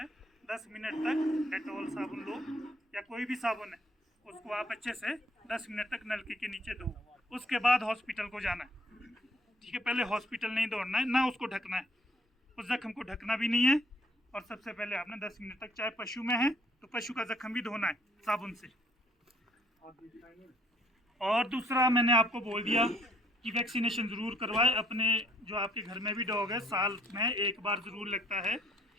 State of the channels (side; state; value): both; normal; correlation 0.63